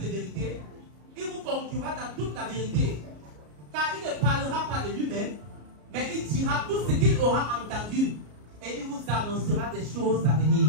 vérité, il vous conduira dans toute la vérité. Car il ne parlera pas de lui-même, mais il dira tout ce qu'il aura entendu. Et il vous annoncera des choses à venir.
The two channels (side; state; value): left; late; 33 ms